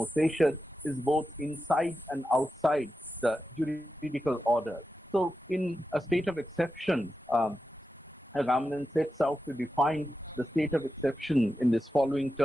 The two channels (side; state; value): both; normal; correlation 0.90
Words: sapiens, is both inside and outside the juridical order. So, in a state of exception, Agamben sets out to define the state of exception in this following